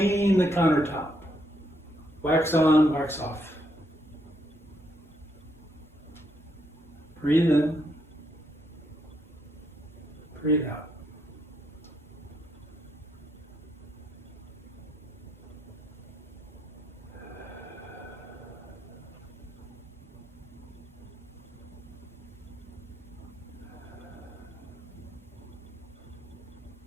the countertop. Wax on, wax off. Breathe in. Breathe out.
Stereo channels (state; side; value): normal; both; correlation 0.76